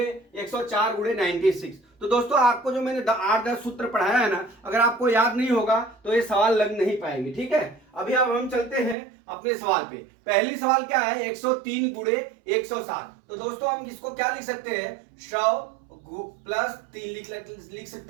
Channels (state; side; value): drops out; left; at 9.0 s